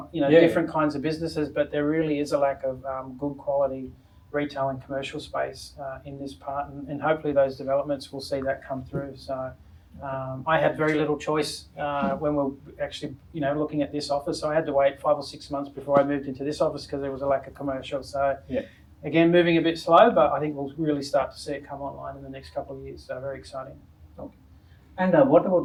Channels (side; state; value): both; identical; correlation 1.00